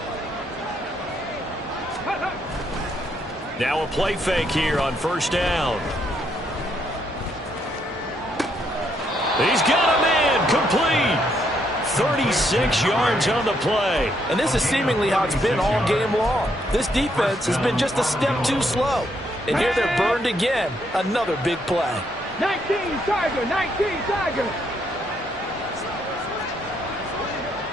Now a play fake here on first down. He's got a man, complete. 36 yards on the play. And this is seemingly how it's been all game long. This defense has been just a step too slow. And here they're burned again. Another big play. 19 Tiger, 19 Tiger.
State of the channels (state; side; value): normal; both; correlation 0.74